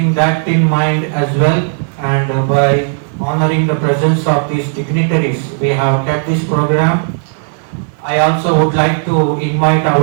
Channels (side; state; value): left; silent; digital silence